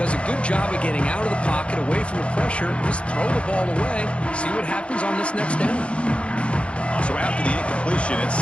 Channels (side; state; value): right; late; 0.060 ms